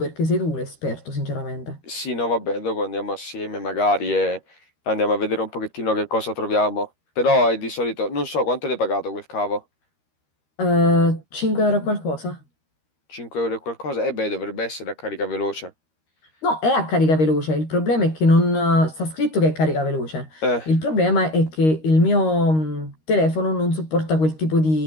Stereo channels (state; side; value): late; right; 13 ms